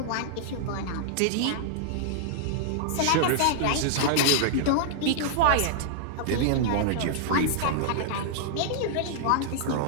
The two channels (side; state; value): both; different; correlation -0.01